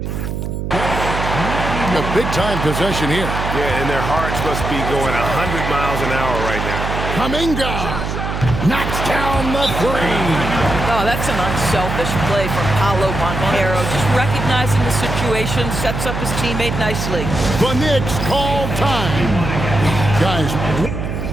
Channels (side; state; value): right; noise; hum, 4 dB below the sound